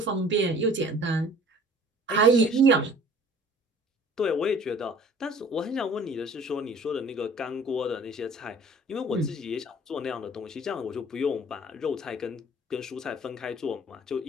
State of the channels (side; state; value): both; normal; correlation 0.50